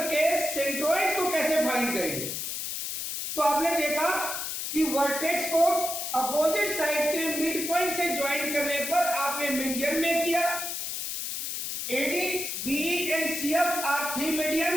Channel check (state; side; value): noise; left; hiss, 4 dB below the sound